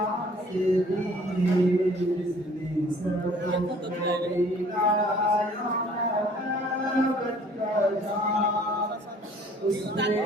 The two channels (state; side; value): normal; both; correlation 0.55